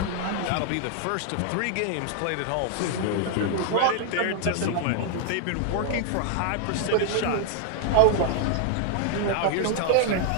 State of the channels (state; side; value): different; both; correlation 0.00